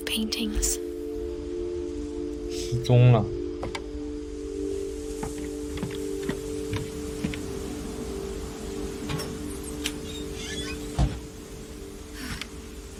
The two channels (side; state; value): both; identical; correlation 1.00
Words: paintings. 失踪了。